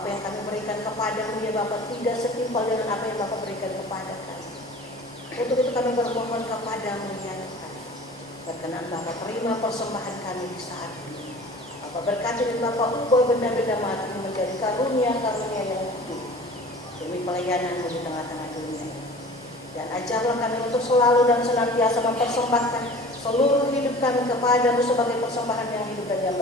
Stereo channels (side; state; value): both; normal; correlation 0.42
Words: apa yang kami berikan kepada-Mu ya Bapa tidak setimpal dengan apa yang Bapa berikan kepada kami. Untuk itu kami bermohon kepada-Mu ya Tuhan, berkenan Bapa terima persembahan kami di saat ini. Bapa berkati dan Bapa ubah benda-benda mati menjadi karunia-karunia yang hidup demi pelayanan-Mu di tengah-tengah dunia ini. Dan ajarlah kami untuk selalu dan senantiasa mempersembahkan seluruh hidup kami kepada-Mu sebagai persembahan yang hidup dan yang